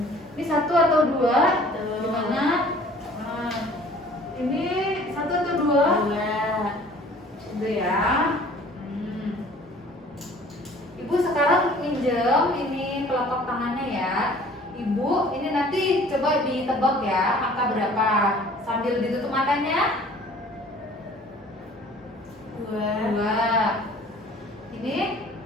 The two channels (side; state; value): both; normal; correlation 0.51